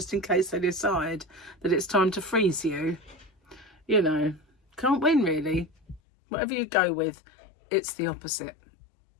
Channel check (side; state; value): right; drops out; at 6.0 s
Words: in case they decide that it's time to freeze you. You know, can't win really. Whatever you go with, it's the opposite.